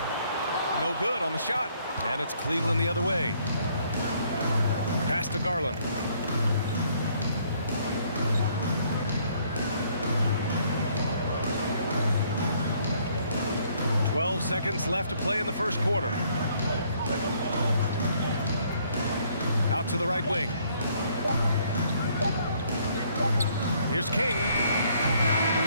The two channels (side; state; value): both; inverted; correlation -0.65